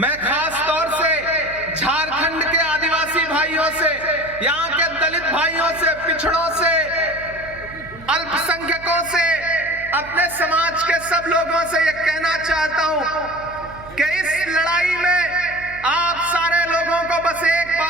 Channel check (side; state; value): right; noise; hum, 19 dB below the sound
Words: खास तौर से झारखंड के आदिवासी भाइयों से, यहाँ के दलित भाइयों से, पिछड़ों से, अल्पसंख्यकों से, अपने समाज के सब लोगों से ये कहना चाहता हूं कि इस लड़ाई में आप सारे लोगों को बस एक